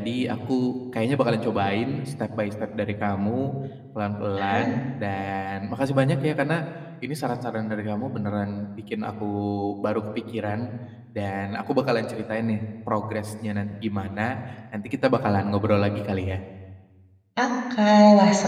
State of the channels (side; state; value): both; identical; correlation 1.00